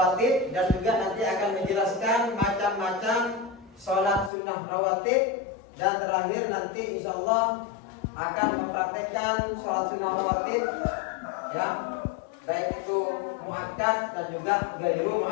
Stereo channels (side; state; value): right; drops out; at 4.3 s